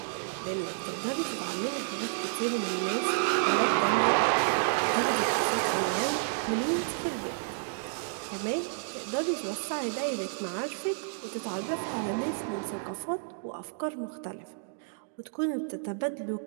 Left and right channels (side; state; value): left; silent; digital silence